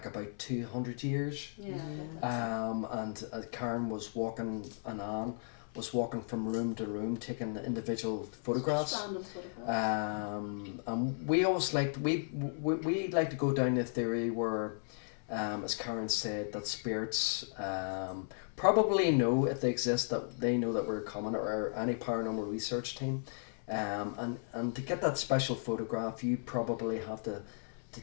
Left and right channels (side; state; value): right; silent; 54 dB below the other